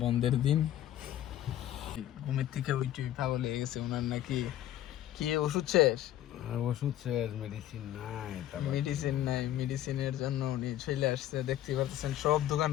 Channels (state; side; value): quieter; right; 12.7 dB